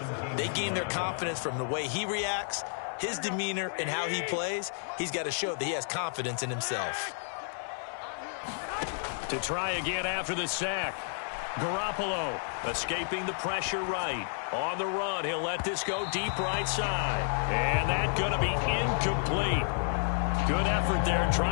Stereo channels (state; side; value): silent; right; digital silence